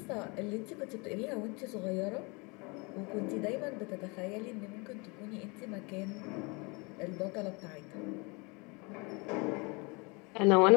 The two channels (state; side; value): quieter; right; 29.0 dB